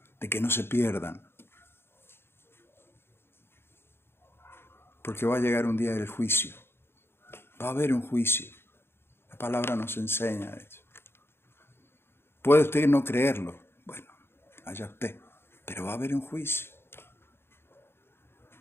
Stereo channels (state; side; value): late; right; 0.11 ms